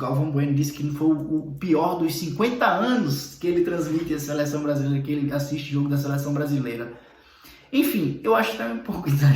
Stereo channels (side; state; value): both; identical; correlation 1.00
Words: Bueno disse que foi o pior dos 50 anos que ele transmite a seleção brasileira, que ele assiste jogo da seleção brasileira. Enfim, eu acho que é um pouco